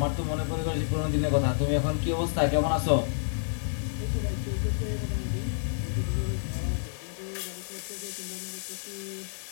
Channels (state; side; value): silent; right; digital silence